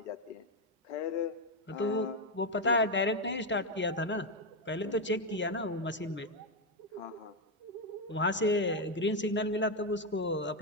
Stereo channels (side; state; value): both; normal; correlation 0.05